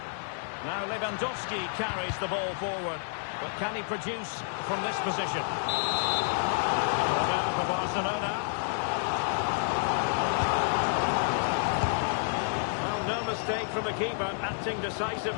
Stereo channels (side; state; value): right; silent; digital silence